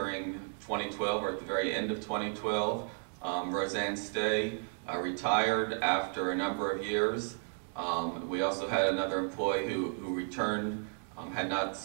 2012, or at the very end of 2012. Roseanne Stay retired after a number of years. We also had another employee who returned, had not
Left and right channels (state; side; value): silent; left; 55 dB below the other